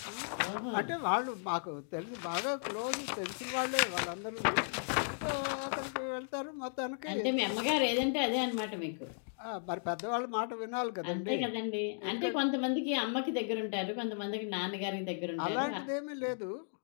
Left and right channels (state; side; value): silent; right; digital silence